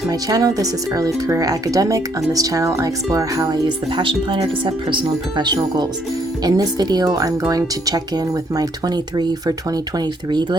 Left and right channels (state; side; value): normal; both; correlation 0.69